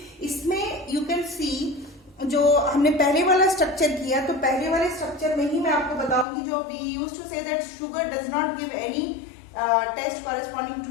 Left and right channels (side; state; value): right; drops out; at 6.2 s